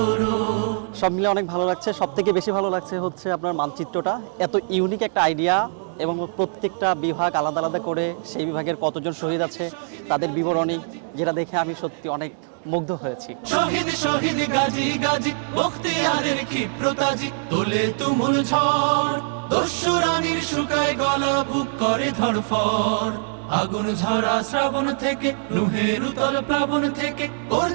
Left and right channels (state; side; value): silent; left; digital silence